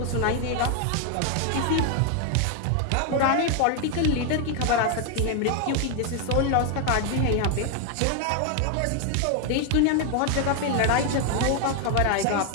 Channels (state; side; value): different; both; correlation 0.01